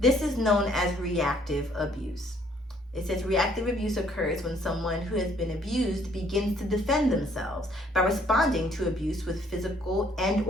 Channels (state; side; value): normal; both; correlation 0.63